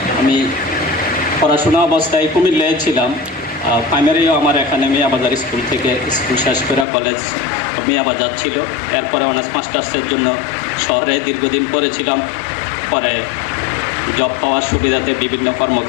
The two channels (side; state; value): right; drops out; at 6.9 s